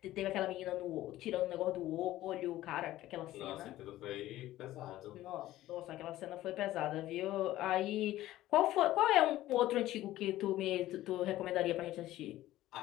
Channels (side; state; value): right; quieter; 15.1 dB